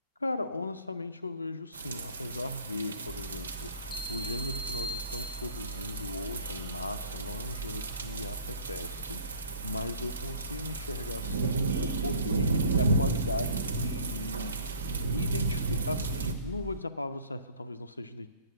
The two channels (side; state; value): both; inverted; correlation -0.49